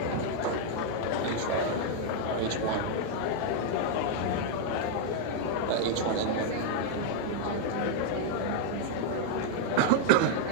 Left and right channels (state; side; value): different; both; correlation 0.00